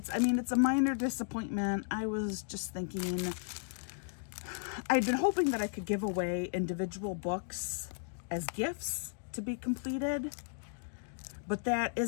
a minor disappointment. I was just thinking, I'd been hoping that I could give away individual books as gifts to be completed. but that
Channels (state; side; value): silent; right; digital silence